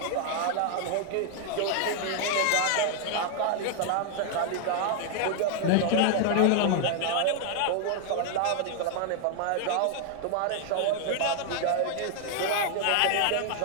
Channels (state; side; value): different; both; correlation 0.00